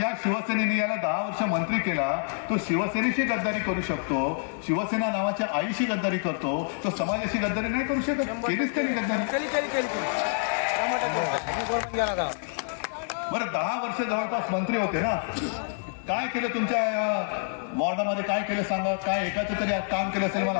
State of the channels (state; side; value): silent; right; digital silence